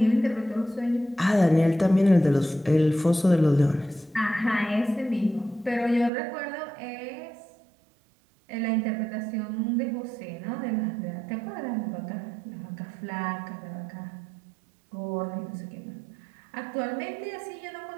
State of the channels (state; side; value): drops out; left; at 6.1 s